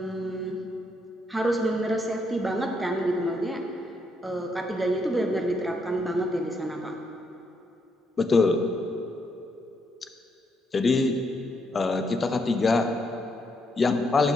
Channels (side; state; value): both; normal; correlation 0.77